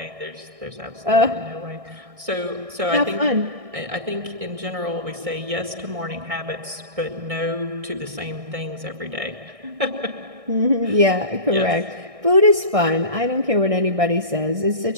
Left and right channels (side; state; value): left; late; 1.6 ms